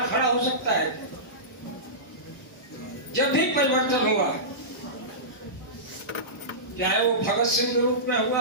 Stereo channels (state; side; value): normal; both; correlation -0.19